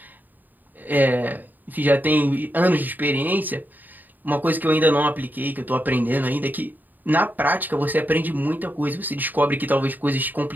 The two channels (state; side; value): late; left; 0.088 ms